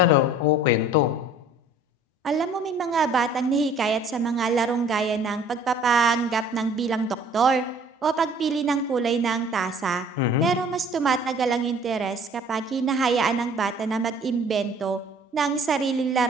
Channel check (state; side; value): normal; both; correlation 0.52